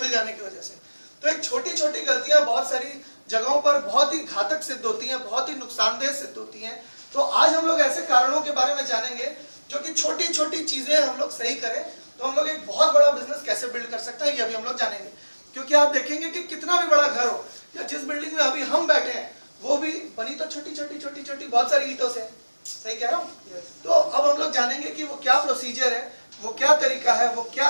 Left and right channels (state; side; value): inverted; both; correlation -1.00